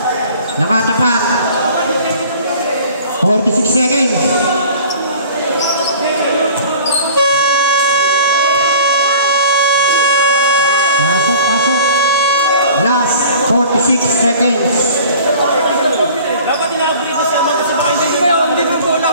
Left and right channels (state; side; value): inverted; both; correlation -0.46